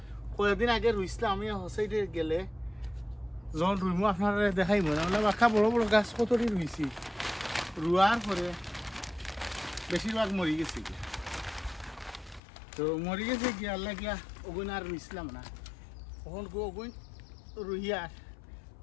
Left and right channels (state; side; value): drops out; right; at 12.4 s